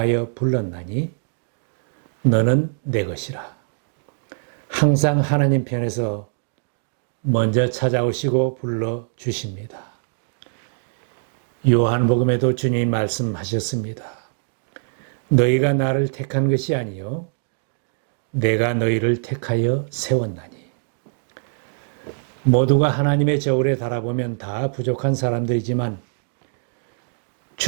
불렀나니 너는 내 것이라. 항상 하나님 편에서 먼저 찾아오시고 불러주십니다. 요한복음에도 주님이 말씀하셨습니다. 너희가 나를 택한 것이 아니요 내가 너희를 택하여 세웠나니. 모두가 하나님의 저울에 달아보면 다 부족한 사람들이지만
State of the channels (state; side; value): silent; left; digital silence